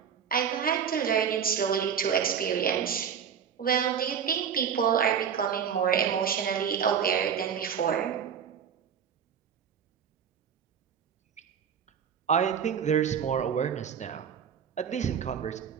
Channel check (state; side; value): quieter; left; 7.7 dB